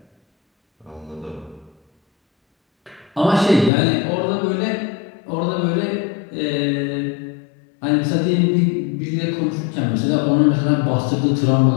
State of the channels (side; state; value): right; drops out; at 3.7 s